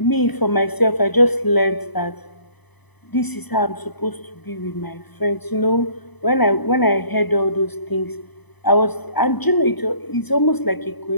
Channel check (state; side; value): late; right; 0.99 ms